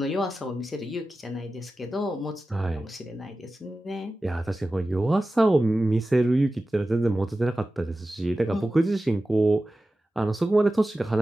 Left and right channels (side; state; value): both; normal; correlation 0.95